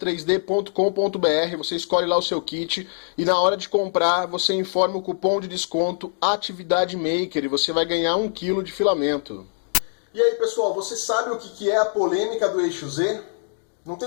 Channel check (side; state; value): right; silent; digital silence